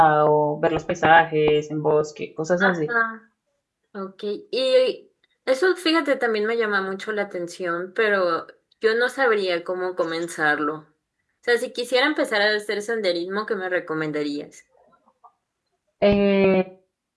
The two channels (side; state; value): both; identical; correlation 1.00